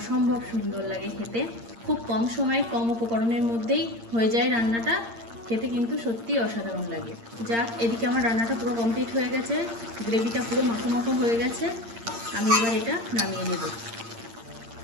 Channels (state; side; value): late; left; 8.7 ms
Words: সুন্দর লাগে খেতে। খুব কম সময়ে কম উপকরণের মধ্যেই হয়ে যায় রান্নাটা, খেতে কিন্তু সত্যিই অসাধারণ লাগে। যাক, এদিকে আমার রান্নাটা পুরো কমপ্লিট হয়ে গেছে, গ্রেভিটা পুরো মাখো মাখো হয়ে গেছে। আমি এবার এটা নামিয়ে নেব।